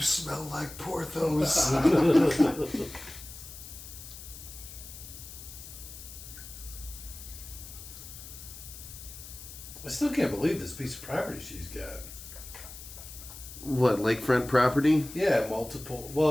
like Porthos. I still can't believe this piece of property she's got. What, lakefront property? Yeah, multiple.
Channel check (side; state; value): left; noise; hiss, 14 dB below the sound